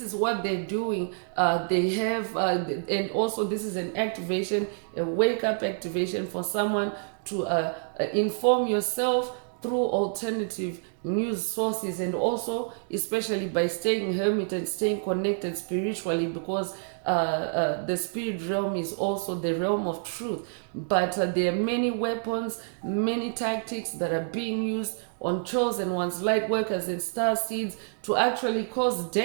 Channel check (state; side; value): silent; left; 59 dB below the other